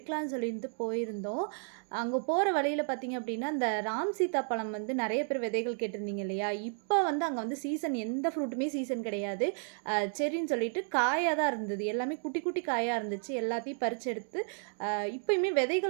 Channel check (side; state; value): left; silent; 56 dB below the other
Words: சொல்லிட்டு போயிருந்தோம். அங்கே போகிற வழியில் பார்த்திங்க அப்படின்னா இந்த ராம் சீதா பழம் வந்து நிறைய பேர் விதைகள் கேட்டிருந்தீங்க இல்லையா? இப்போ வந்து அங்கே வந்து சீசன் எந்த ஃப்ரூட்டுமே சீசன் கிடையாது. சரின்னு சொல்லிட்டு காயாக தான் இருந்தது, எல்லாமே குட்டி குட்டி காயாக இருந்துச்சு. எல்லாத்தையும் பறித்து எடுத்து இப்போயுமே